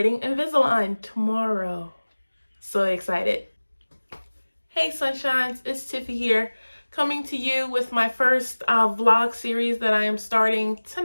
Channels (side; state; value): both; inverted; correlation -1.00